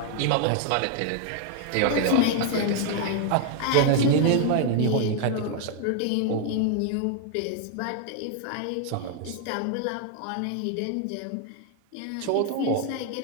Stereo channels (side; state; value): both; different; correlation 0.00